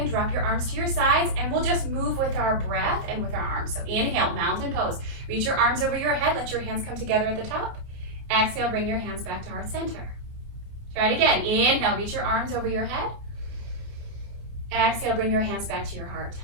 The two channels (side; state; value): left; late; 29 ms